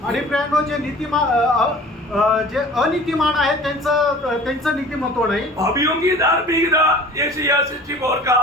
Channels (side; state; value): both; normal; correlation 0.44